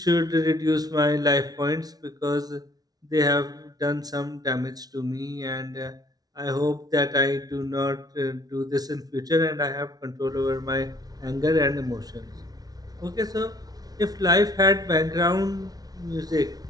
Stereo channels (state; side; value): late; left; 0.19 ms